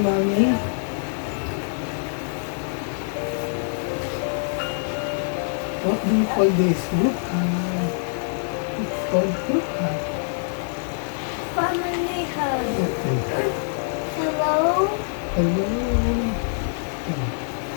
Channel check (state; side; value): silent; right; digital silence